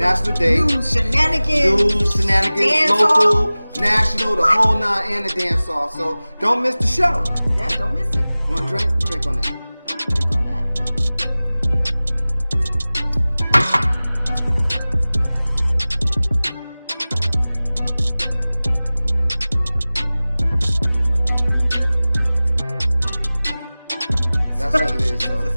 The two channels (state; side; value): inverted; both; correlation -0.98